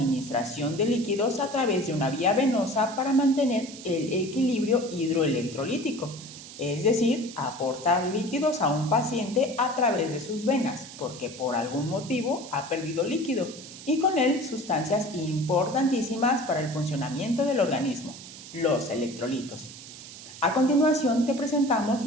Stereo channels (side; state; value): right; noise; hiss, 15 dB below the sound